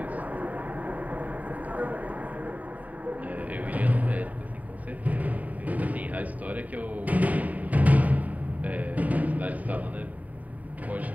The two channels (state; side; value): late; left; 0.073 ms